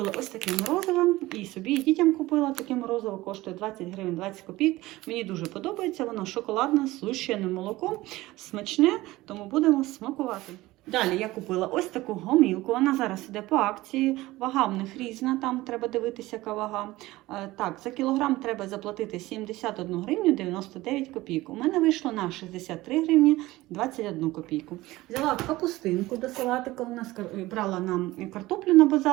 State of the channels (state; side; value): quieter; left; 18.4 dB